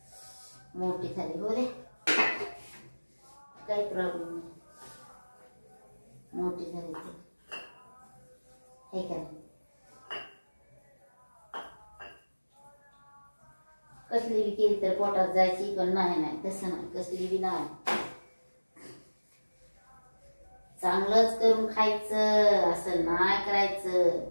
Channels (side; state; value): both; inverted; correlation -1.00